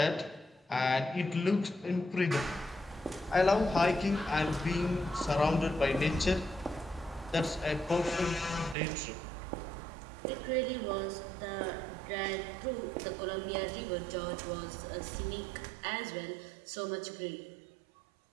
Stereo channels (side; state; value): left; drops out; at 8.8 s